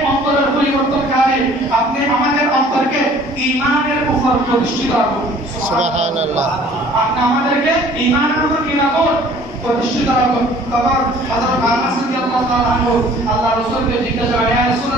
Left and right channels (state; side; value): normal; both; correlation 0.53